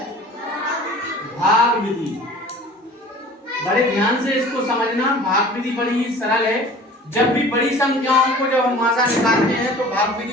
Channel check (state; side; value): normal; both; correlation 0.44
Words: भाग विधि। बड़े ध्यान से इसको समझना। भाग विधि बड़ी ही सरल है। जब भी बड़ी संख्याओं को जब हम मासा निकालते हैं तो भाग